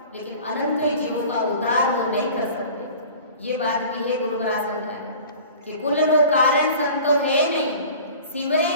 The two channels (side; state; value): both; inverted; correlation -0.42